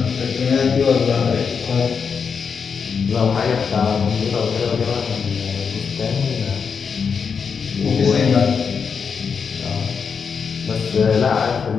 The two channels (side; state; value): right; quieter; 6.0 dB